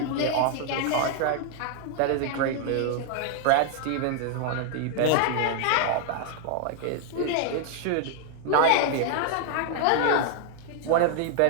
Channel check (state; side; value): different; both; correlation 0.00